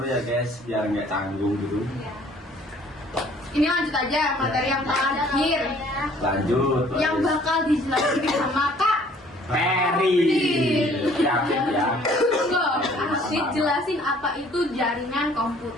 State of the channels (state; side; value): normal; both; correlation 0.57